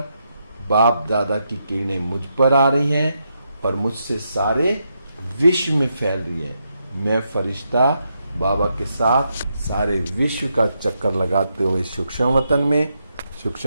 बाप दादा की किरणें मुझ पर आ रही हैं और मुझसे सारे विश्व में फैल रही हैं। मैं फरिश्ता बाबा के साथ सारे विश्व का चक्कर लगाते हुए सूक्ष्म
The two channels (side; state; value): both; inverted; correlation -0.82